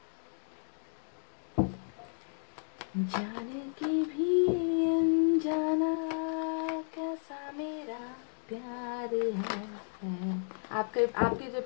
जाने की भी अनजाना कैसा मेरा प्यार है। आपके आपके जो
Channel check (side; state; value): right; silent; digital silence